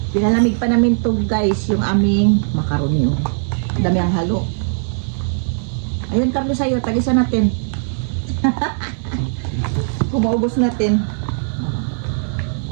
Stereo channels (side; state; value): left; silent; digital silence